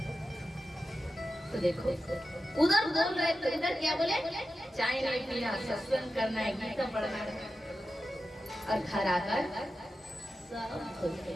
तो देखो उधर बोल रहे थे, इधर क्या बोले, चाय नहीं पीना, सत्संग करना है, गीता पढ़ना है, और घर आकर सब भूल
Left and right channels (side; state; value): both; normal; correlation 0.92